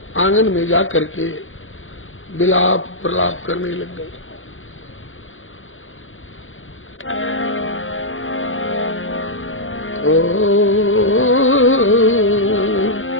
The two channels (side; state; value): right; late; 0.58 ms